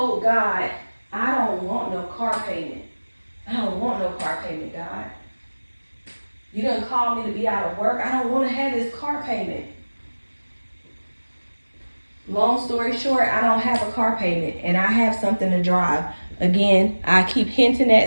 God, I don't want no car payment. I don't want no car payment, God. You done called me to be out of work. I don't want to have this car payment. Long story short, I don't have a car payment and I have something to drive. Again, I keep hinting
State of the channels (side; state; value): both; inverted; correlation -1.00